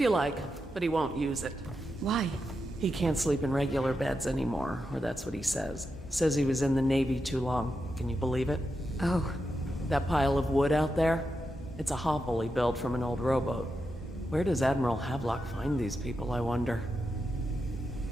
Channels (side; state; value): both; normal; correlation 0.87